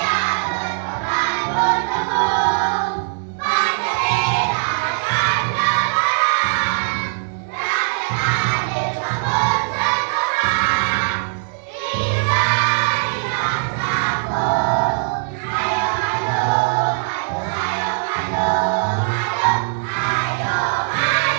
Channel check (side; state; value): left; silent; digital silence